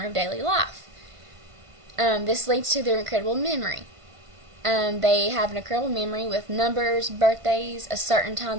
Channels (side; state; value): left; late; 1.5 ms